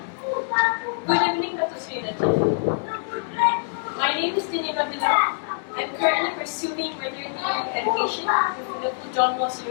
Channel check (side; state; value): right; silent; digital silence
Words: good evening, Dato Sri Najib. My name is Nabila. I'm currently pursuing veterinary education with Liverpool John Moss